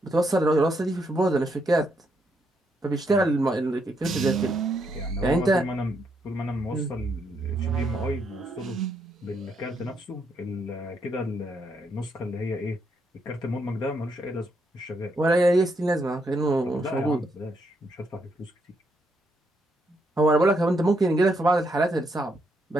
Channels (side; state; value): both; normal; correlation 0.77